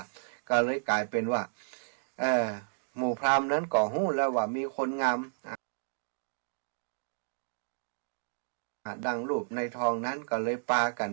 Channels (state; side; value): silent; left; digital silence